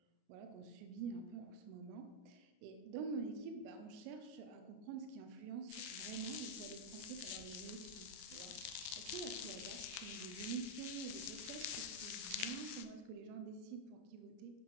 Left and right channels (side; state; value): left; late; 33 ms